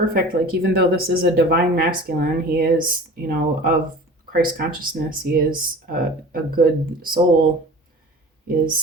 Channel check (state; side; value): normal; both; correlation 0.40